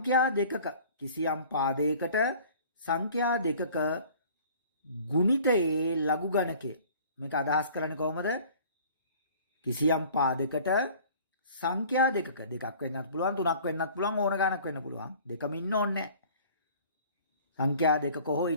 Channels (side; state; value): both; inverted; correlation -0.49